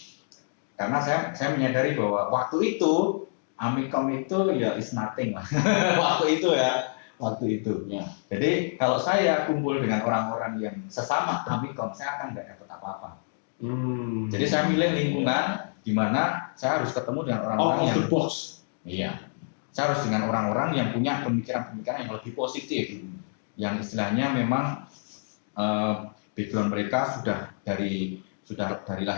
Karena saya menyadari bahwa waktu itu Amikom itu ya is nothing lah. waktu itu. Ya. Jadi kalau saya kumpul dengan orang-orang yang sesama Amikom, saya akan nggak dapat apa-apa. Jadi saya milih lingkungan di mana saya harus ketemu dengan orang-orang out of the box. Iya. Saya harus dengan orang-orang yang punya pemikiran-pemikiran yang lebih positif, yang istilahnya memang background mereka sudah dari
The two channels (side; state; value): right; silent; digital silence